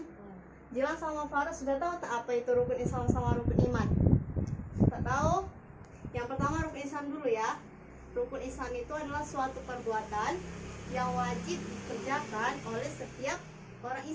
Jilan sama Faras sudah tahu tak apa itu rukun Islam sama rukun iman? Tak tahu? Yang pertama rukun Islam dulu ya. Rukun Islam itu adalah suatu perbuatan yang wajib dikerjakan oleh setiap orang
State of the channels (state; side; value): identical; both; correlation 1.00